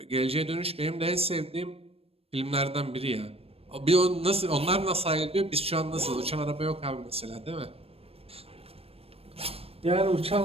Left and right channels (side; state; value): left; late; 0.28 ms